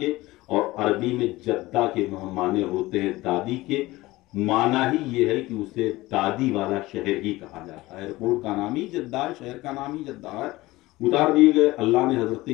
और अरबी में जद्दा के माने होते हैं दादी के। माना ही ये है कि उसे दादी वाला शहर ही कहा जाता है। एयरपोर्ट का नाम ही जद्दा है, शहर का नाम ही जद्दा है। उतार दिए गए। अल्लाह ने हजरत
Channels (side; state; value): right; quieter; 19.1 dB